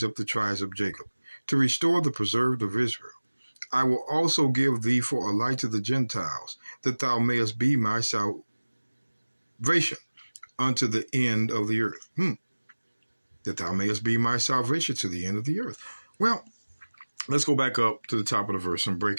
up the tribes of Jacob, to restore the preserved of Israel. I will also give thee for a light to the Gentiles, that thou mayest be my salvation unto the end of the earth." That thou mayest be my salvation to the end of the earth. Well, let's go back up to the top of the verse and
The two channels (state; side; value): inverted; both; correlation -1.00